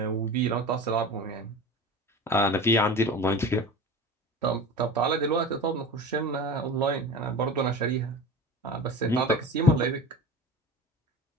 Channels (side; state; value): both; normal; correlation 0.33